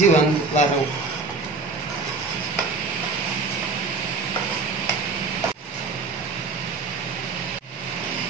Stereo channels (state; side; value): quieter; left; 4.0 dB